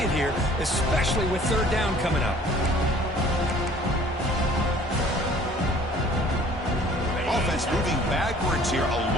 here, especially with 3rd down coming up. Offense moving backwards here, a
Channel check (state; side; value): normal; both; correlation 0.53